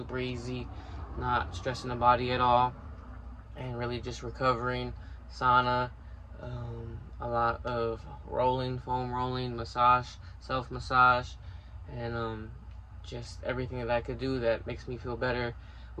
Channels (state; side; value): identical; both; correlation 1.00